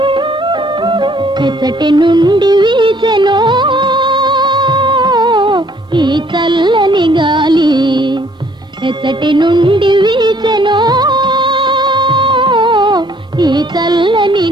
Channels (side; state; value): both; normal; correlation 0.62